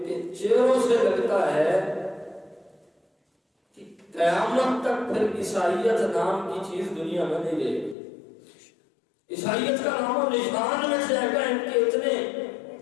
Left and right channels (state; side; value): drops out; right; at 8.0 s